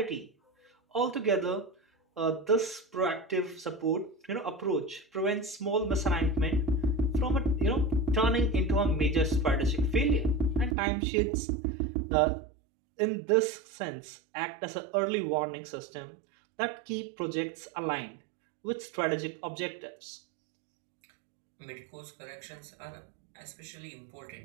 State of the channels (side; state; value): left; drops out; at 10.8 s